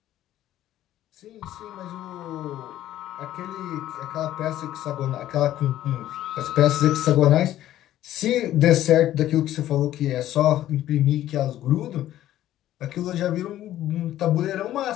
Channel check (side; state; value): right; quieter; 13.1 dB